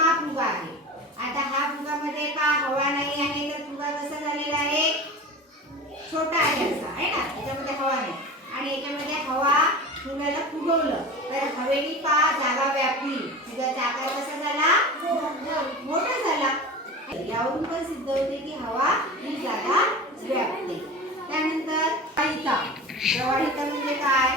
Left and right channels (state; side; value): normal; both; correlation 0.33